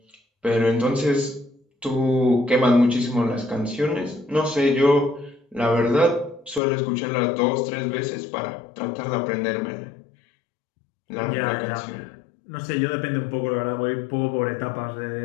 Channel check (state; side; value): drops out; right; at 6.6 s